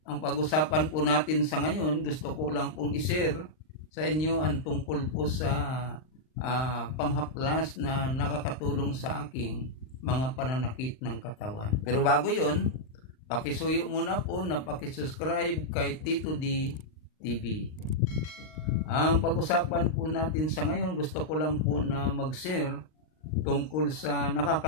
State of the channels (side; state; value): right; late; 39 ms